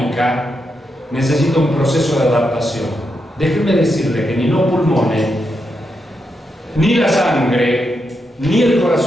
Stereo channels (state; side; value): normal; both; correlation 0.84